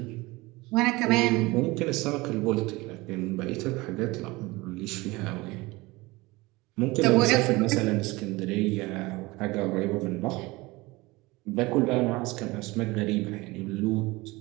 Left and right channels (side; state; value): left; quieter; 22.1 dB